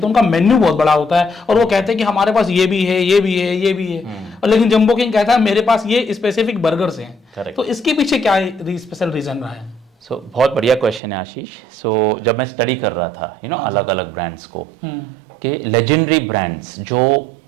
उनका मेन्यू बहुत बड़ा होता है, और वो कहते हैं कि हमारे पास ये भी है, ये भी है, ये भी है, और लेकिन जंबो किंग कहता है मेरे पास ये स्पेसिफिक बर्गर्स हैं। तो इसके पीछे क्या स्पेशल रीजन रहा है? बहुत बढ़िया क्वेश्चन है आशीष। जब मैं स्टडी कर रहा था अलग अलग ब्रांड्स को, कि लेजेंडरी ब्रांड्स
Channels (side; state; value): left; drops out; at 11.0 s